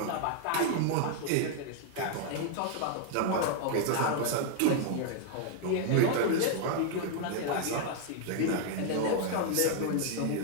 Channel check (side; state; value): both; different; correlation 0.00